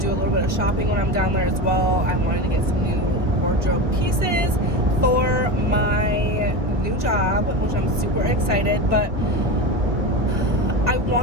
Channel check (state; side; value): late; left; 1.1 ms